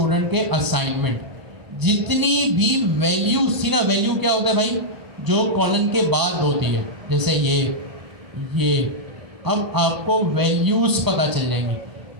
के असाइनमेंट, जितनी भी वैल्यूज थी ना। वैल्यू क्या होता है भाई? जो कॉलन के बाद होती है, जैसे ये। अब आपको वैल्यूज पता चल जाएंगी।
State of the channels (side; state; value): left; late; 1.0 ms